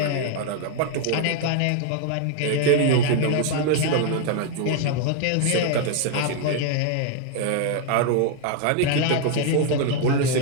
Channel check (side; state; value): both; different; correlation 0.00